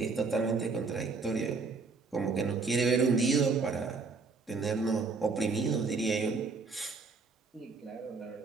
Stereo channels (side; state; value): left; quieter; 4.4 dB